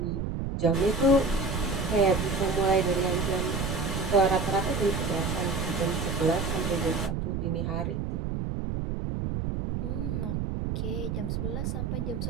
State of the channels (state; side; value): noise; right; rumble, 2 dB below the sound